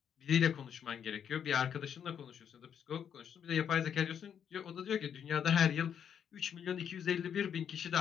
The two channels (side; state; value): right; quieter; 8.3 dB